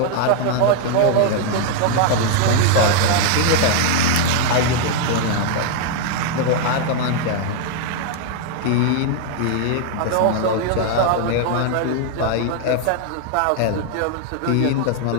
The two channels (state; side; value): different; both; correlation 0.00